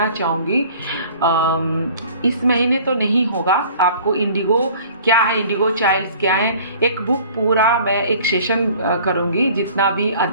चाहूँगी। इस महीने तो नहीं होगा, आपको इंडिगो क्या है, इंडिगो चाइल्ड्स क्या है, एक बुक पूरा मैं एक सेशन करूँगी, जितना भी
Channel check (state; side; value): inverted; both; correlation -0.49